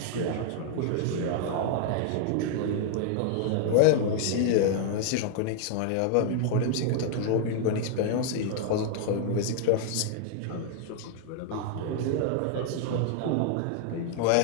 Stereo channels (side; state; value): both; different; correlation -0.01